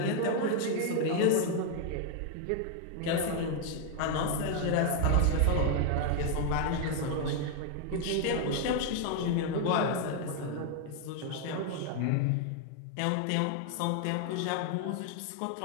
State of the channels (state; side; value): different; both; correlation 0.01